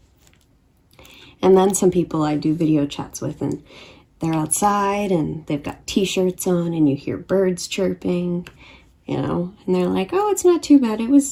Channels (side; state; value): both; identical; correlation 1.00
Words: And then some people I do video chats with, and they're outside and they've got t-shirts on and you hear birds chirping, you know, and they're like, oh, it's not too bad. It